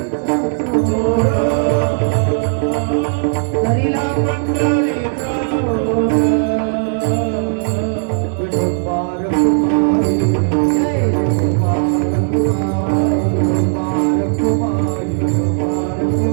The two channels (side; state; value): left; silent; digital silence